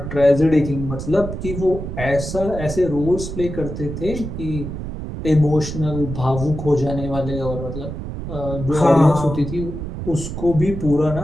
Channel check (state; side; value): noise; right; rumble, 7 dB below the sound